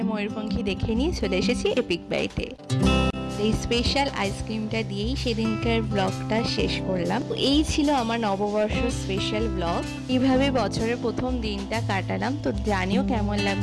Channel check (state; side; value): identical; both; correlation 1.00